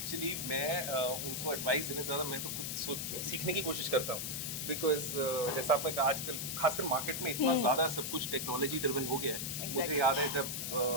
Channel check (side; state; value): left; noise; hiss, 3 dB below the sound